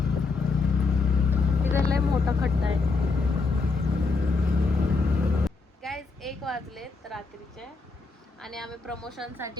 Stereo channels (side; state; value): right; quieter; 4.0 dB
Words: तिथं लय मोठा खड्डा आहे. गाईज 1 वाजलेत रात्रीचे आणि आम्ही